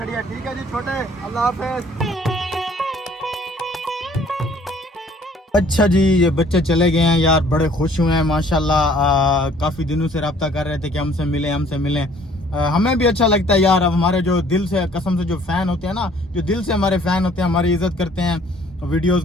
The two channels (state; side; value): normal; both; correlation 0.57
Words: है। ठीक है जी छोटे, अल्लाह हाफिज़। अच्छा जी ये बच्चे चले गए हैं यार, बड़े खुश हुए हैं माशाल्लाह। काफ़ी दिनों से रब्ता कर रहे थे कि हमसे मिलें। हमें भी अच्छा लगता है यार। अब हमारे जो दिल से कसम से जो फ़ैन होते हैं ना, जो दिल से हमारे फ़ैन होते हैं, हमारी इज़्ज़त करते हैं, वीडियोस